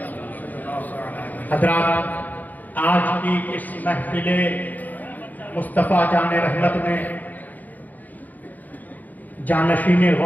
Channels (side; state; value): right; late; 0.082 ms